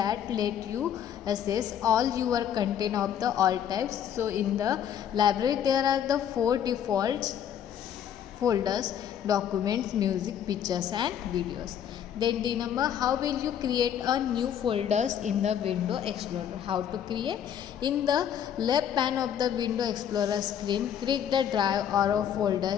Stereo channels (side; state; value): right; quieter; 9.3 dB